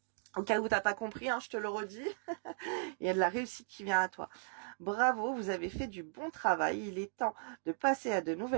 Au cas où t'as pas compris, hein, je te le redis, il y a de la réussite qui vient à toi. Bravo, vous avez fait du bon travail. Il est temps de passer à de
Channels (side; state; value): left; silent; digital silence